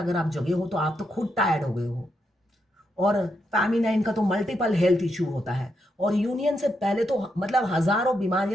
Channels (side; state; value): both; normal; correlation 0.81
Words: आप जगे हो तो आप तो खुद टायर्ड हो गए हो। और फेमिनाइन का तो मल्टीपल हेल्थ इश्यू होता है और यूनियन से पहले तो मतलब हजारों